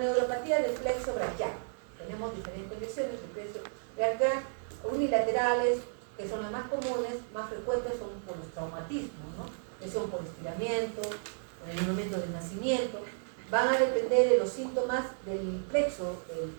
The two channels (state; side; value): silent; left; digital silence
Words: del plexo braquial tenemos diferentes lesiones del plexo braquial unilaterales, que son las más comunes, más frecuentes son por los traumatismos, ¿no? Lesión por estiramiento, en el momento del nacimiento. Van a depender de los síntomas del plexo,